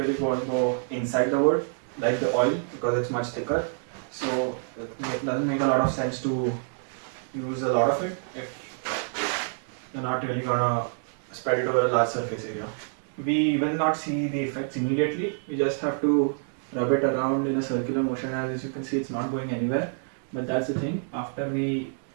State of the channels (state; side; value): silent; left; digital silence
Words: going to go inside the wood like the oil because it's much thicker. So it doesn't make a lot of sense to use a lot of it if you're not really going to spread it over a large surface area. We will not see the effects immediately. We just have to rub it around in a circular motion. As you can see, it's not going anywhere. But that's the thing. After we